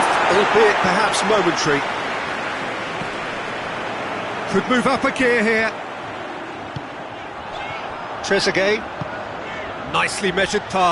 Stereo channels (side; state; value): both; identical; correlation 1.00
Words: albeit perhaps momentary. Could move up a gear here. Trezeguet. Nicely measured